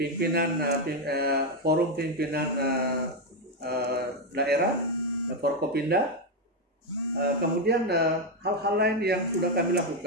forum pimpinan daerah Forkopimda, kemudian hal-hal lain yang sudah kami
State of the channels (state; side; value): normal; both; correlation 0.06